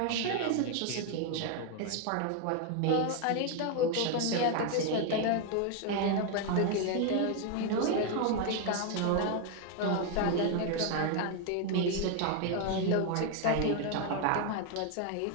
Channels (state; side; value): different; both; correlation 0.01